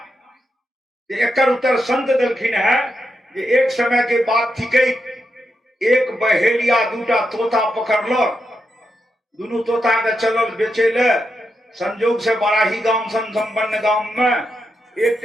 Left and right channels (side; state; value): both; normal; correlation 0.85